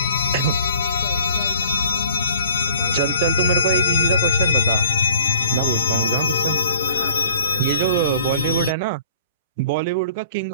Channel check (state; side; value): inverted; both; correlation -0.55